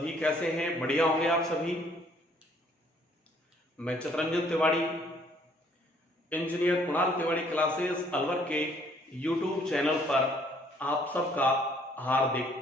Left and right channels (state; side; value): normal; both; correlation 0.62